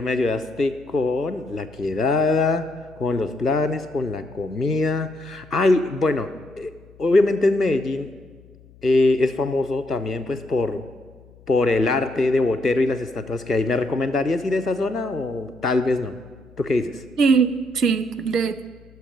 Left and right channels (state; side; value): noise; left; hum, 25 dB below the sound